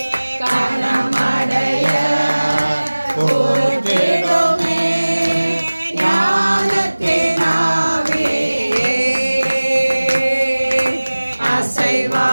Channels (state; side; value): inverted; both; correlation -1.00